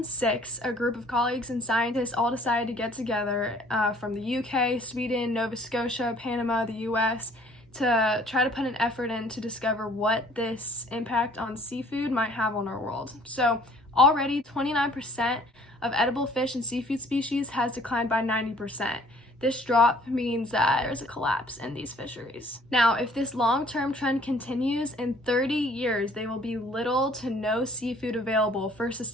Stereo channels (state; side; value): normal; both; correlation 0.56